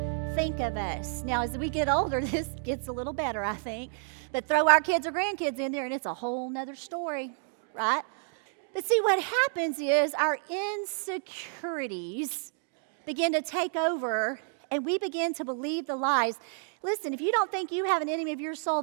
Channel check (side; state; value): left; silent; 58 dB below the other